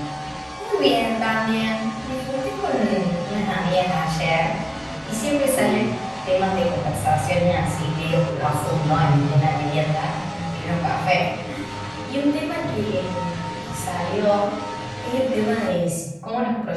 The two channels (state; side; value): identical; both; correlation 1.00